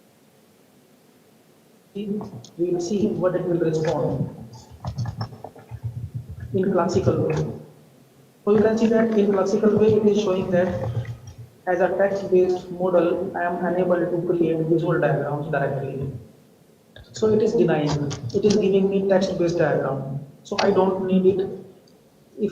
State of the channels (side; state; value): both; identical; correlation 1.00